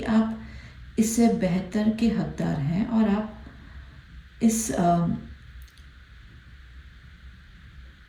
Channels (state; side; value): identical; both; correlation 1.00